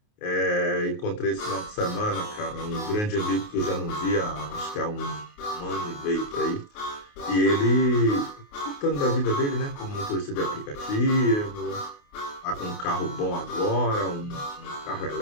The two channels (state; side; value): late; right; 28 ms